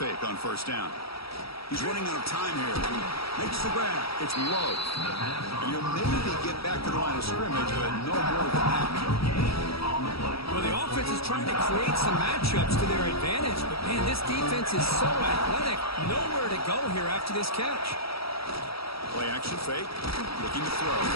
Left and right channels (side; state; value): right; late; 0.76 ms